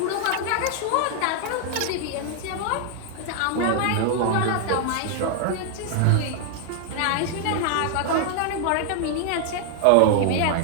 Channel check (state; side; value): different; both; correlation 0.00